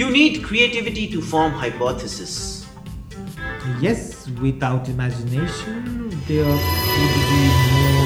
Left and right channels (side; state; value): both; identical; correlation 1.00